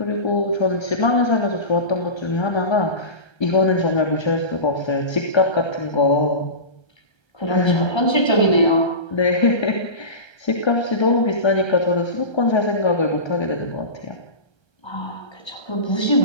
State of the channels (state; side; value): late; right; 1.3 ms